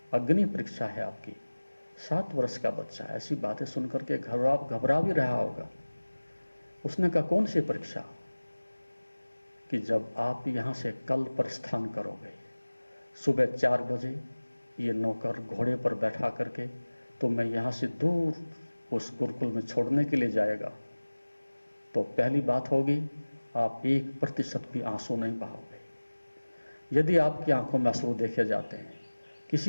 अग्नि परीक्षा है आपकी। 7 वर्ष का बच्चा ऐसी बातें सुनकर के घबरा भी रहा होगा। उसने कहा, कौन सी परीक्षा? कि जब आप यहाँ से कल प्रस्थान करोगे, सुबह 4 बजे ये नौकर घोड़े पर बैठा करके तो मैं यहाँ से दूर उस गुरुकुल में छोड़ने के लिए जाएगा, तो पहली बात होगी, आप 1% भी आंसू नहीं बहाओगे। यदि आपकी आंखों में आंसू देखे जाते हैं,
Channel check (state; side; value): inverted; both; correlation -1.00